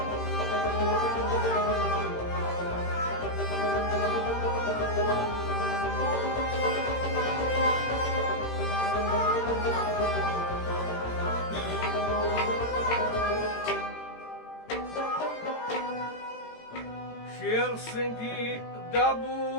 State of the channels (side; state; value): right; late; 18 ms